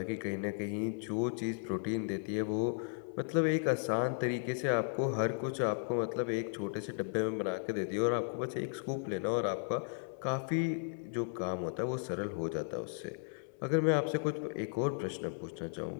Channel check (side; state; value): right; silent; 54 dB below the other